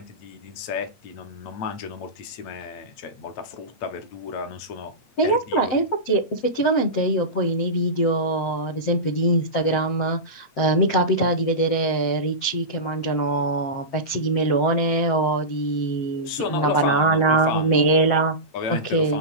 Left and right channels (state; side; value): late; right; 7.8 ms